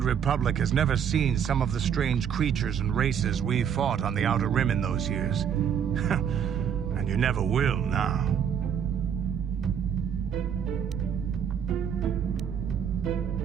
republic has never seen some of the strange creatures and races we fought on the Outer Rim in those years. And you never will now.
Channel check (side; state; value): left; quieter; 8.2 dB